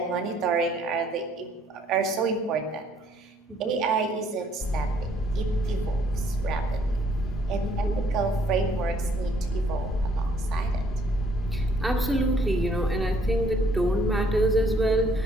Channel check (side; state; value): both; normal; correlation 0.65